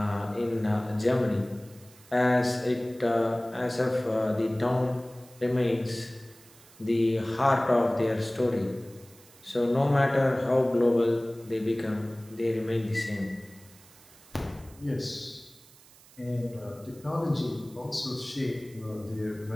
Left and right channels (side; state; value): right; noise; hiss, 24 dB below the sound